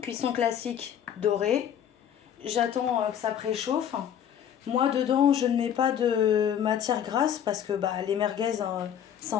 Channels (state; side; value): quieter; right; 9.3 dB